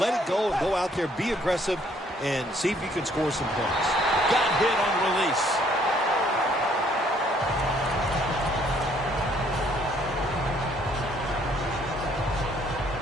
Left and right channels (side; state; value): both; normal; correlation 0.64